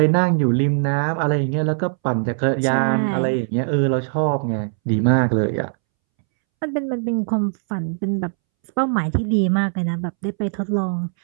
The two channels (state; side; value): silent; left; 65 dB below the other